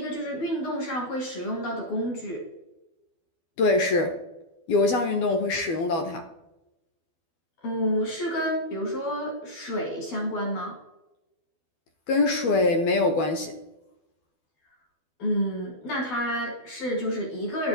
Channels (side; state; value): right; late; 12 ms